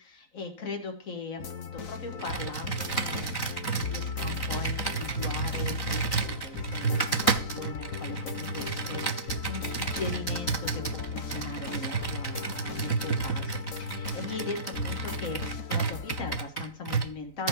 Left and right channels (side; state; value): right; late; 3.9 ms